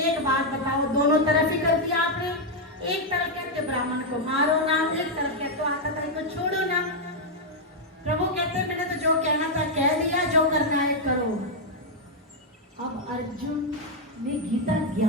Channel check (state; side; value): normal; both; correlation -0.01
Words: बात बताओ, दोनों तरफ ही कर दिया आपने। एक तरफ कहते ब्राह्मण को मारो ना, एक तरफ कहते आटा ताई को छोड़ो ना। प्रभु कहते मैंने तो जो कहना था कह दिया, जो करना है करो। अब अर्जुन ने गीता